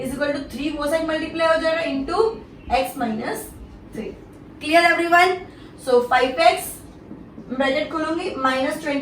equal to 3 वो साइड मल्टीप्लाई हो जाएगा into x minus 3. Clear everyone? So 5x bracket खोलूंगी माइनस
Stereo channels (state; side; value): identical; both; correlation 1.00